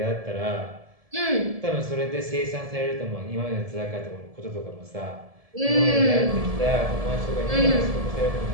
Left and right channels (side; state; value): left; late; 1.7 ms